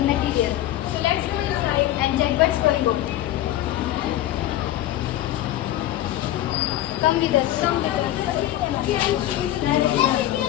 material. So let's go inside and check what's going on. Come with us.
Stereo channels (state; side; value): quieter; right; 13.8 dB